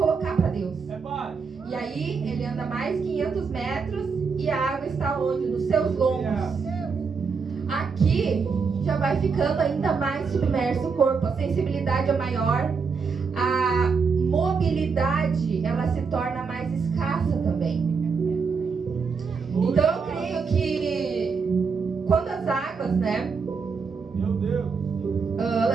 para Deus. E aí ele anda mais 500 metros e a água está onde? Nos seus lombos. Aqui já vai ficando ainda mais submerso o corpo, a sensibilidade é maior, a mobilidade ela se torna mais escassa também. Então eu creio que quando as águas, Meu Deus,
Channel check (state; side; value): quieter; left; 5.3 dB